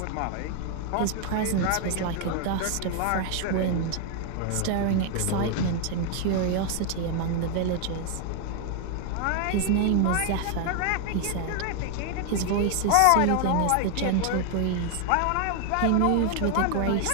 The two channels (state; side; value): different; both; correlation 0.00